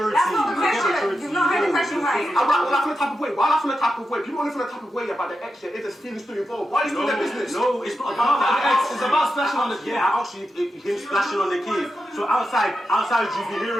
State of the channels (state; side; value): normal; both; correlation 0.89